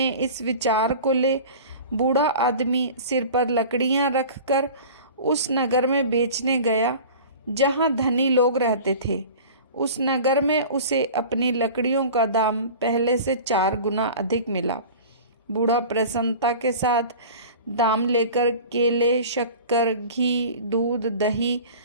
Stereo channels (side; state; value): both; inverted; correlation -0.39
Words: इस विचार को ले बूढ़ा आदमी सिर पर लकड़ियाँ रखकर उस नगर में बेचने गया जहाँ धनी लोग रहते थे। उस नगर में उसे अपनी लकड़ियों का दाम पहले से 4 गुना अधिक मिला। बूढ़ा प्रसन्नता के साथ दाम लेकर केले, शक्कर, घी, दूध, दही